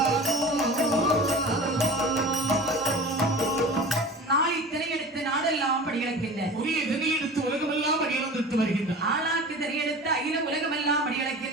ஆளாக்கு திரையெடுத்து அகில உலகமெல்லாம்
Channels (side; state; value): both; normal; correlation 0.37